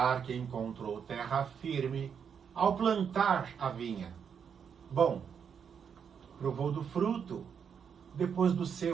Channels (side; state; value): left; quieter; 7.2 dB